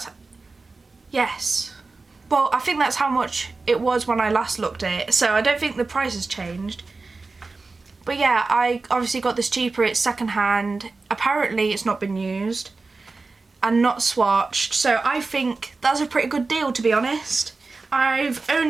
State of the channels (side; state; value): left; quieter; 3.8 dB